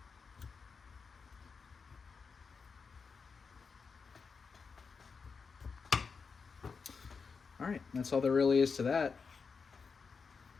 All right, that's all there really is to that.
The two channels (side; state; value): right; quieter; 5.2 dB